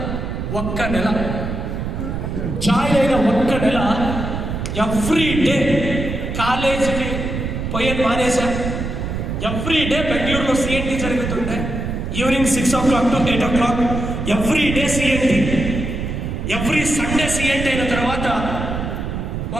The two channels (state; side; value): noise; right; rumble, 4 dB below the sound